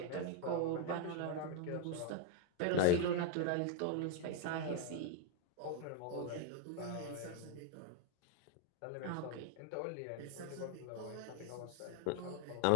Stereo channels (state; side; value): different; both; correlation 0.01